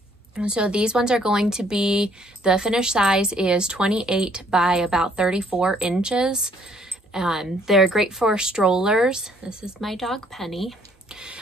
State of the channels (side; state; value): both; normal; correlation 0.64